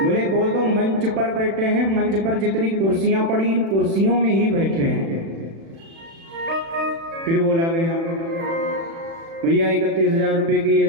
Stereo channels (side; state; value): left; late; 36 ms